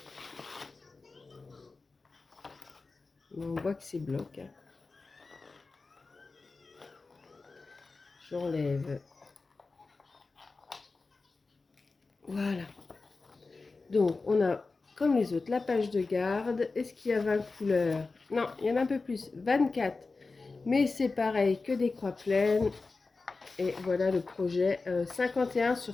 On voit que c'est bloc. Hein. J'enlève. Voilà. Donc, on a, comme les autres, la page de garde. Est-ce qu'il y a 20 couleurs? Non, il y en a un peu plus. 24. Mais c'est pareil que des croix pleines. Et voilà le projet. 51 sur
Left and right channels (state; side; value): quieter; right; 3.9 dB